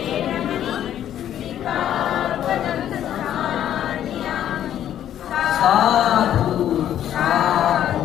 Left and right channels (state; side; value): quieter; right; 10.9 dB